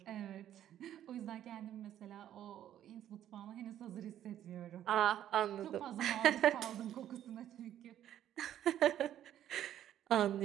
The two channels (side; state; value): left; quieter; 11.4 dB